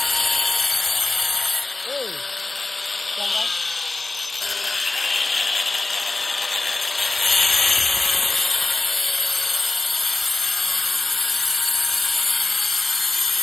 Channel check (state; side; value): quieter; right; 3.2 dB